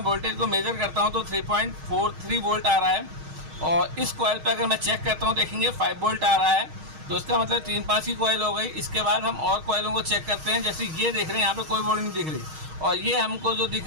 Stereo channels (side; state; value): left; late; 6.4 ms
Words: वोल्टेज को मेजर करता हूँ तो 3.43 वोल्ट आ रहा है और इस कॉइल पे अगर मैं चेक करता हूँ देखेंगे 5 वोल्ट आ रहा है। तो इसका मतलब 3-5 की कॉइल हो गई। इसके बाद हम और कॉइलों को चेक करते हैं। जैसे ये देख रहे हैं यहाँ पे कोई वोल्ट नहीं दिख रही और ये हमको जो